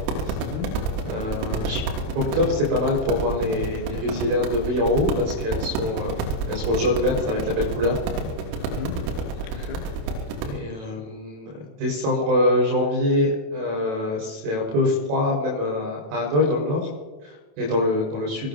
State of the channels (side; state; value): left; late; 27 ms